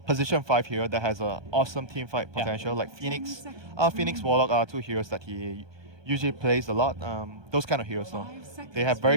position 5 hero that has a awesome team fight Yeah. potential. Like Phoenix, Phoenix Warlock are 2 heroes that he usually plays a lot. Those kind of heroes, though, they have very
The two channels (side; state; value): left; late; 1.2 ms